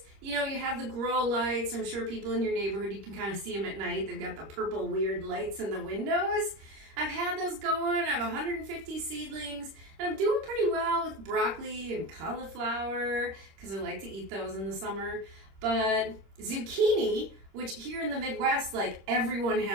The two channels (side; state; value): left; late; 26 ms